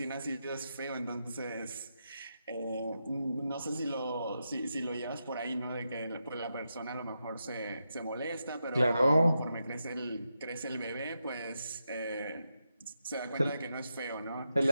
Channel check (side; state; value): both; inverted; correlation -0.86